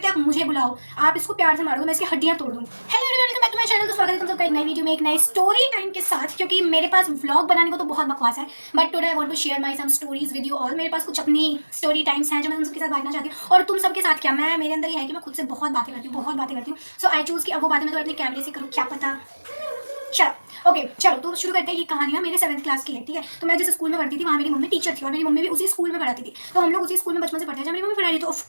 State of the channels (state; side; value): inverted; both; correlation -1.00